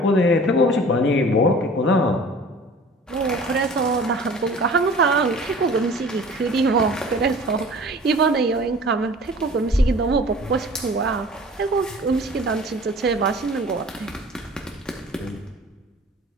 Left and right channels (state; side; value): normal; both; correlation 0.45